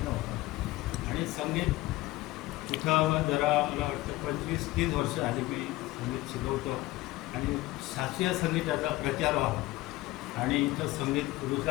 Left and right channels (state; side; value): quieter; right; 18.6 dB